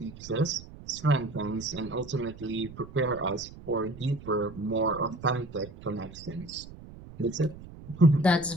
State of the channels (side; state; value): right; noise; rumble, 16 dB below the sound